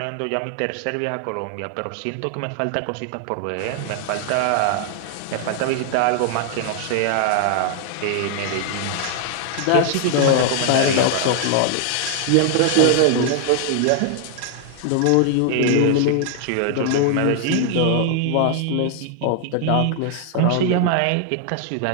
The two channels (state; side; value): different; both; correlation 0.00